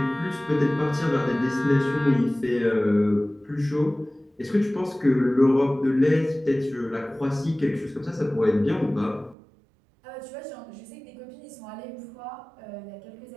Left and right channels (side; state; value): left; drops out; at 9.3 s